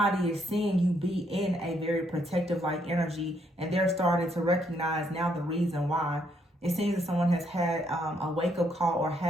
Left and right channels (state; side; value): normal; both; correlation 0.73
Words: is seeing you be in a very protective like energy, and they're starting to recognize now the reason why. It seems that someone has had a wake-up call or